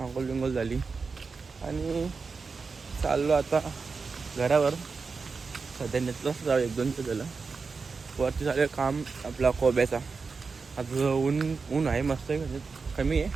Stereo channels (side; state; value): left; quieter; 4.7 dB